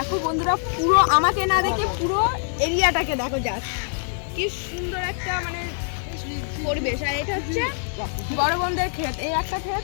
বন্ধুরা, পুরো আমাকে না দেখে পুরো এরিয়াটাকে দেখো, জাস্ট কি সুন্দর একটা মানে পরিবেশ। আর এটা হচ্ছে বড় বোনদের ক্ষেত, এই একটা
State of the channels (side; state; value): right; silent; 63 dB below the other